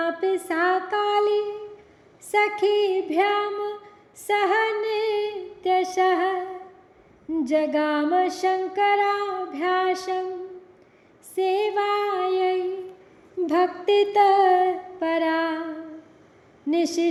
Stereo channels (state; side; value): identical; both; correlation 1.00